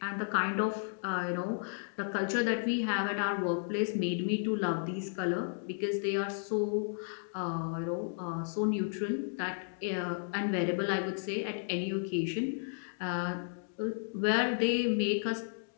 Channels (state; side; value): silent; right; digital silence